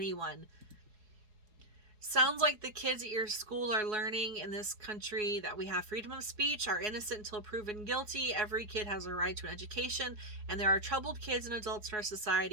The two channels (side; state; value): left; late; 4.7 ms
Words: Sounds like the kids at your school are learning in this country that we have freedom of speech, are innocent until proven guilty. Every kid has a right to an education, and there are troubled kids and adults in our